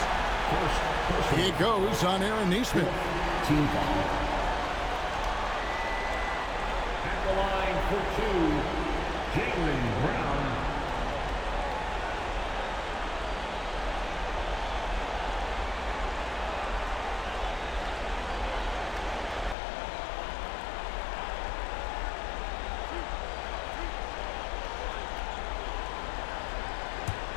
It goes on Aaron Nesmith. Team foul. At the line for 2, Jaylen Brown.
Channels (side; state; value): right; drops out; at 19.6 s